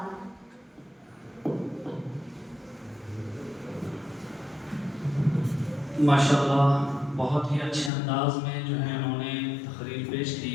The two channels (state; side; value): drops out; right; at 7.9 s